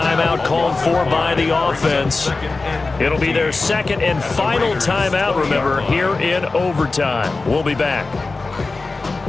called for by the offense. It'll be their second and final timeout, remember, here in overtime. We'll be back.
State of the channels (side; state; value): right; quieter; 3.7 dB